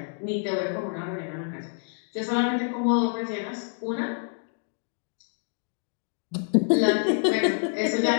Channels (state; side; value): silent; right; 56 dB below the other